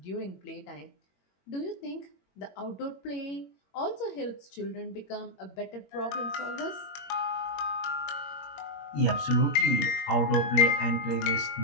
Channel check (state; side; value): late; right; 21 ms